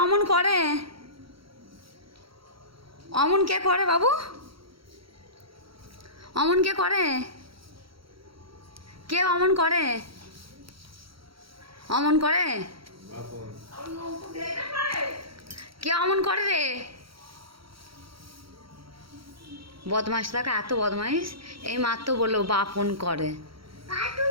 অমন করে? অমন কে করে বাবু? অমন কে করে? কে অমন করে? অমন করে? কে অমন করে রে? বদমাস থাকে, এত বদমাইশ। এই মাত্র বললো বাপন করে।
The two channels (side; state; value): left; late; 0.75 ms